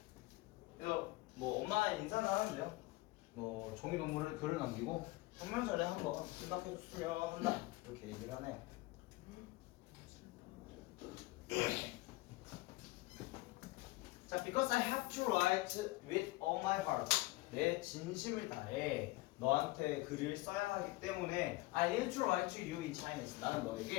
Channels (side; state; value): right; quieter; 20.9 dB